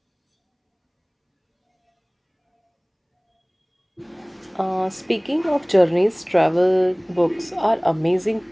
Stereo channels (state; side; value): identical; both; correlation 1.00